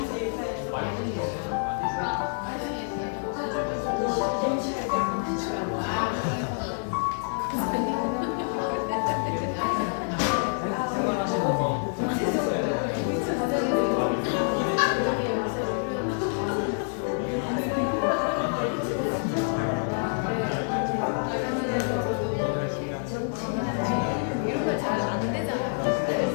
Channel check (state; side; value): silent; right; digital silence